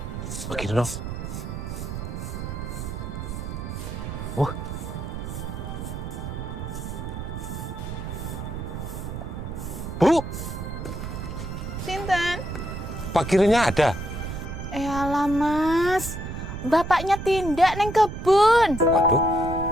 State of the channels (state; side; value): noise; right; rumble, 6 dB below the sound